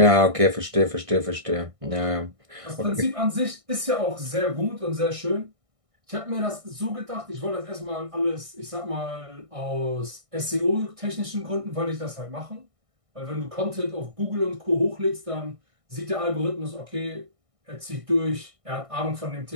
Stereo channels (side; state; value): left; late; 1.6 ms